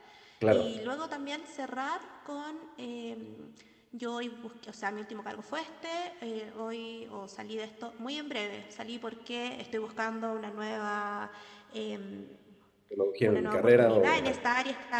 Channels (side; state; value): both; identical; correlation 1.00